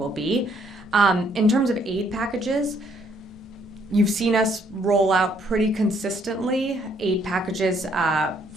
be. In terms of aid packages, you've seen us roll out pretty consistently aid packages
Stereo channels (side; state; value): both; normal; correlation 0.67